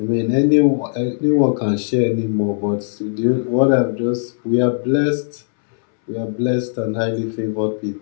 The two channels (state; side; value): silent; right; 65 dB below the other